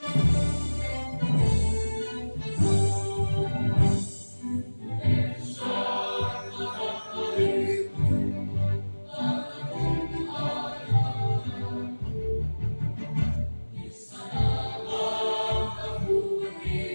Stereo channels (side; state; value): both; inverted; correlation -1.00